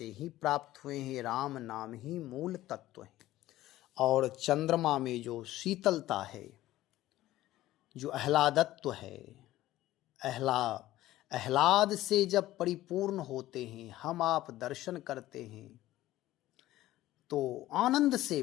ही प्राप्त हुए हैं। राम नाम ही मूल तत्व है। और चंद्रमा में जो शीतलता है, जो आह्लादत्व है, आह्लाद से जब परिपूर्ण होते हैं, हम आप दर्शन करते हैं तो आनंद से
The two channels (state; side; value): quieter; right; 15.4 dB